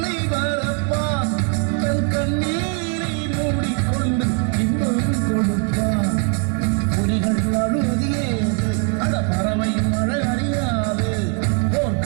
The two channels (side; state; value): left; quieter; 37.0 dB